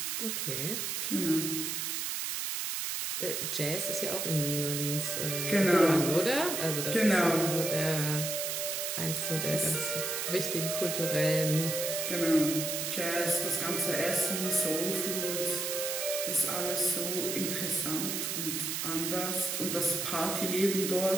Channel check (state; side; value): noise; right; hiss, 2 dB below the sound